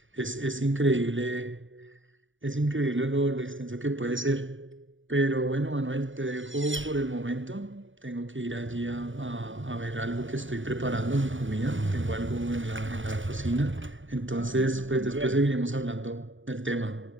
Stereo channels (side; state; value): left; late; 0.56 ms